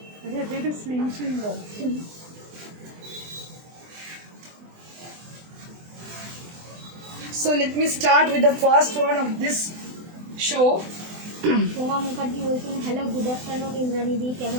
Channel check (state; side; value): late; left; 24 ms